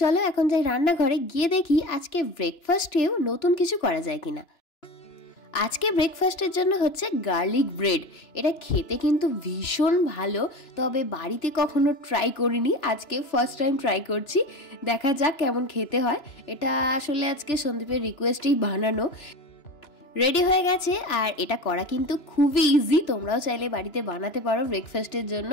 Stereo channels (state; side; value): late; right; 2.9 ms